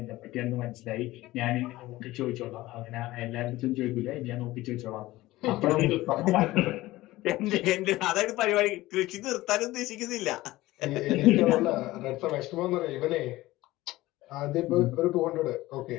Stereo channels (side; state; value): right; quieter; 17.8 dB